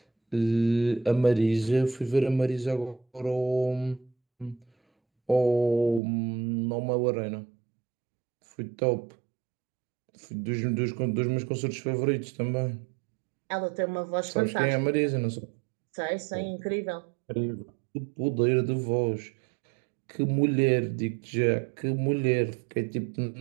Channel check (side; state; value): left; drops out; at 6.0 s